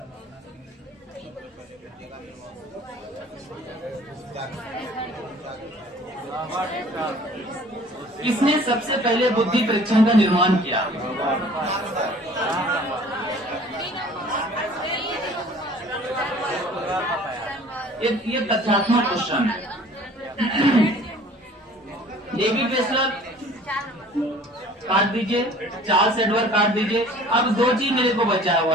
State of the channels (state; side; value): normal; both; correlation 0.50